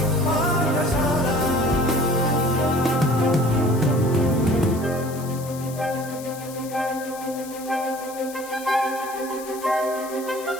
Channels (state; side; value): noise; left; hiss, 16 dB below the sound